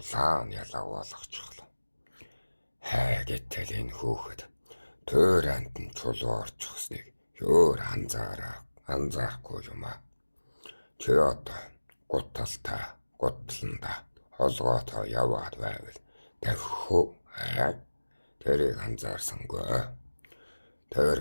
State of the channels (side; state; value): both; inverted; correlation -1.00